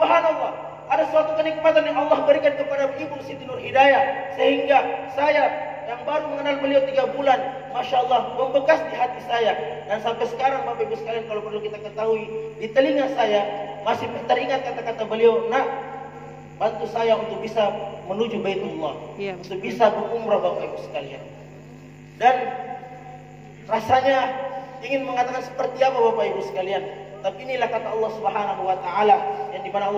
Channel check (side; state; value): both; identical; correlation 1.00